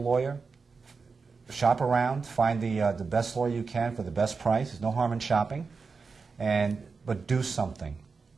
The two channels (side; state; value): left; quieter; 4.8 dB